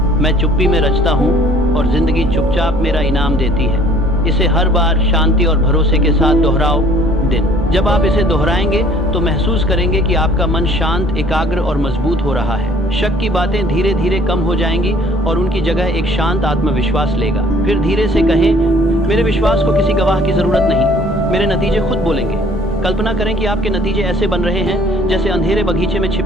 मैं चुप्पी में रचता हूँ और जिंदगी चुपचाप मेरा इनाम देती है। इसे हर बार शांति और भरोसे के साथ दोहराओ दिन। जब आप इसे दोहराएंगे तो महसूस करेंगे कि आपका मन शांत, एकाग्र और मजबूत हो रहा है। शक की बातें धीरे धीरे कम हो जाएंगी और उनकी जगह एक शांत आत्मविश्वास लेगा। फिर धीरे से कहें, मेरे विश्वास को किसी गवाह की जरूरत नहीं, मेरे नतीजे खुद बोलेंगे। कल्पना करें कि आपके नतीजे ऐसे बन रहे हैं जैसे अंधेरे बगीचे में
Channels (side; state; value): both; normal; correlation 0.56